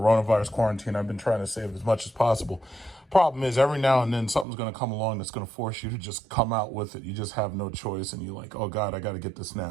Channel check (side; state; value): left; drops out; at 4.5 s